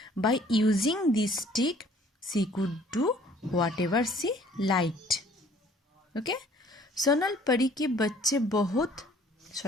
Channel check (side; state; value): both; normal; correlation 0.56